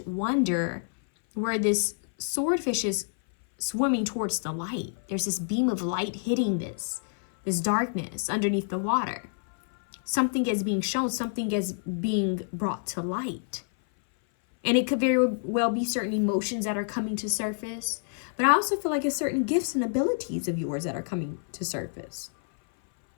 wonder where this swordfish is swimming towards the light. There's this beam of light hitting this darkness underneath the water. Something is being shown, something is being brought to light. And it could very well be certain emotions that are coming to surface. But I also feel like it's certain gifts and abilities of yours that are coming to surface.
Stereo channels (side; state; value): right; silent; 58 dB below the other